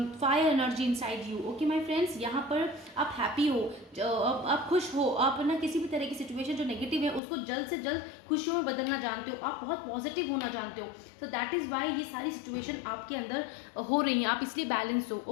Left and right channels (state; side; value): drops out; right; at 7.2 s